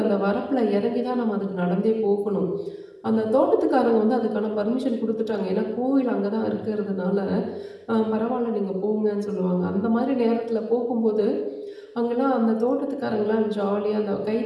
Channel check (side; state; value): both; identical; correlation 1.00